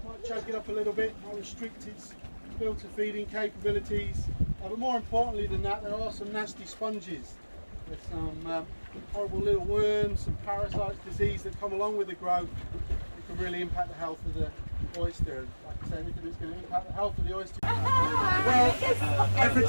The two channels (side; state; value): both; inverted; correlation -1.00